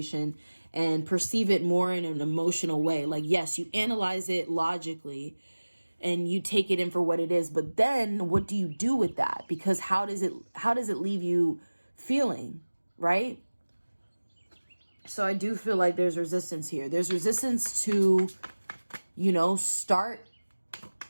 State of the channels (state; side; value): inverted; both; correlation -1.00